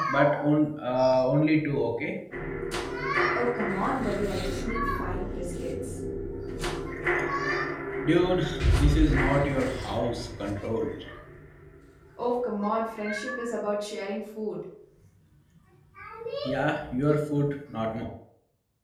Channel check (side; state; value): both; identical; correlation 1.00